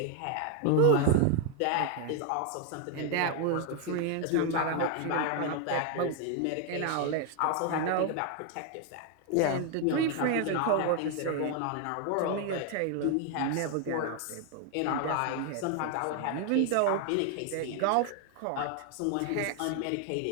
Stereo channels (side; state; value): both; different; correlation 0.01